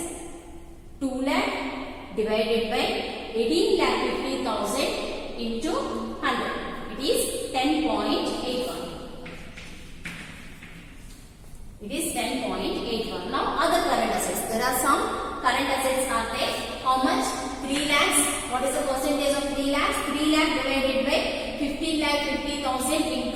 2 lakh divided by 18,50,000 into 100. It is 10.81. It is 10.81. Now other current assets. There are some current assets are there. How much? 3 lakhs. What is the percentage of 3 lakhs? 3 lakh divided by 15,50,000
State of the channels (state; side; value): identical; both; correlation 1.00